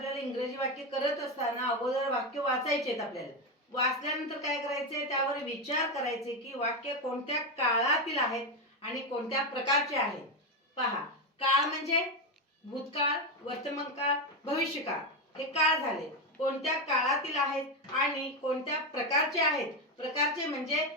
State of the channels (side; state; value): both; normal; correlation 0.11